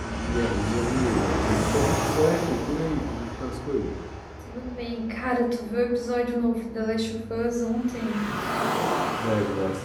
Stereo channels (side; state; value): both; identical; correlation 1.00